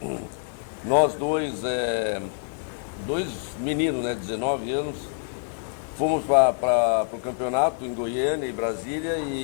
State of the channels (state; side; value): silent; right; 61 dB below the other